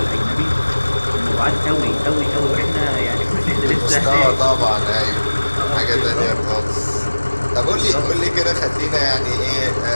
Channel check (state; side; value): inverted; both; correlation -1.00